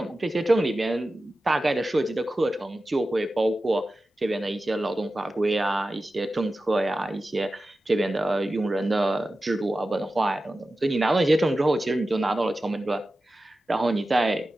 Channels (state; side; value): normal; both; correlation 0.94